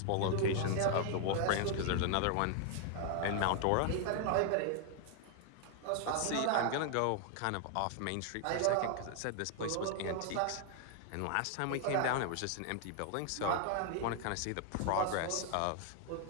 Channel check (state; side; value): different; both; correlation 0.00